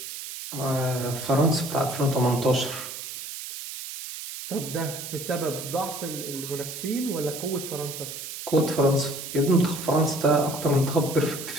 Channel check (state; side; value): noise; right; hiss, 9 dB below the sound